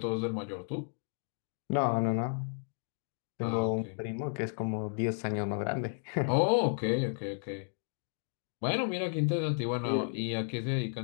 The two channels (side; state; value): right; silent; digital silence